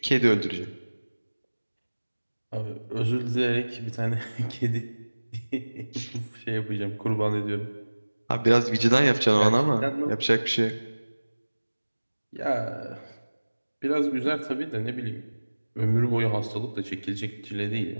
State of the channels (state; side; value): inverted; both; correlation -1.00